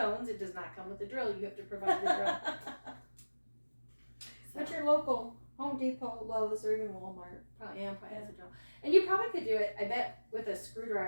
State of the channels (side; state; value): both; inverted; correlation -1.00